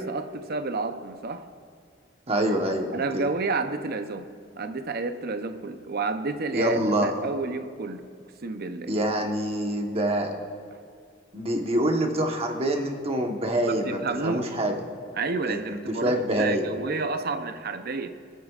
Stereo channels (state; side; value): normal; both; correlation 0.33